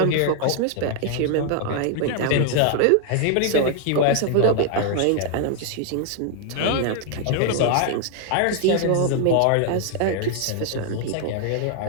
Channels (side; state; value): both; different; correlation 0.00